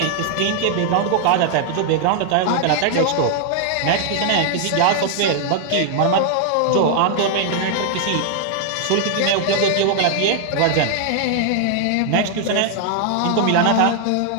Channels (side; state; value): both; different; correlation 0.00